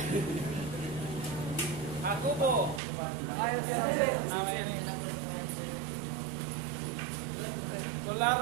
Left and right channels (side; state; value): left; drops out; at 2.8 s